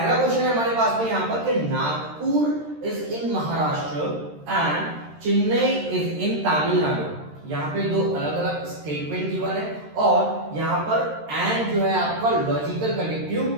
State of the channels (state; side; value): late; left; 13 ms